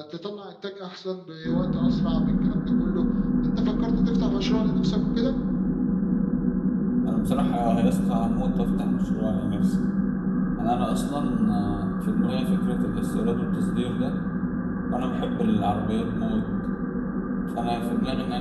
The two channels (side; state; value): both; identical; correlation 1.00